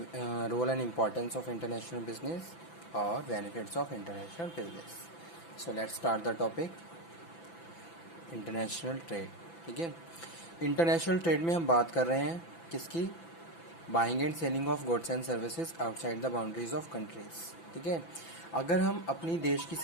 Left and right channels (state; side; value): late; right; 6.0 ms